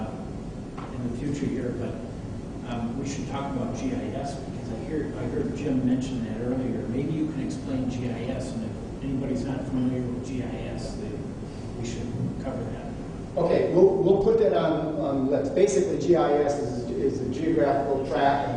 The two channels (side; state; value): both; identical; correlation 1.00